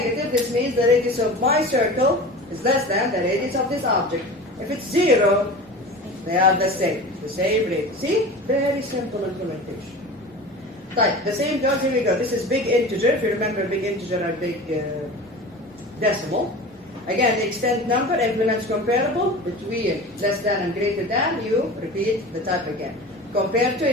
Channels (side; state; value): both; normal; correlation 0.34